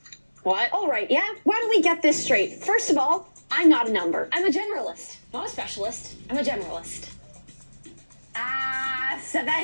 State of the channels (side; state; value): both; inverted; correlation -1.00